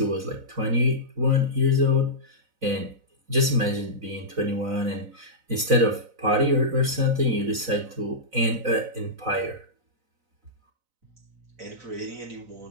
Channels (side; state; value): left; late; 4.0 ms